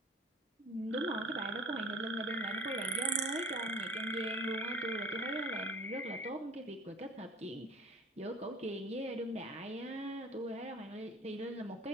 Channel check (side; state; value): both; normal; correlation 0.45